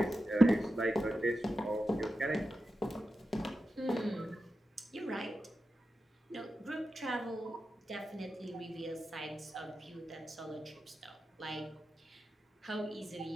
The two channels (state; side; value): normal; both; correlation 0.91